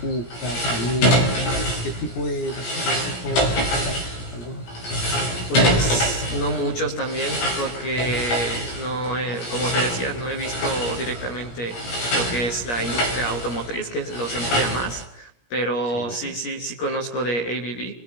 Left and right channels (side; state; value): right; late; 17 ms